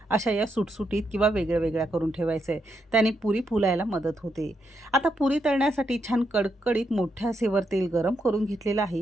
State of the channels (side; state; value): both; normal; correlation 0.81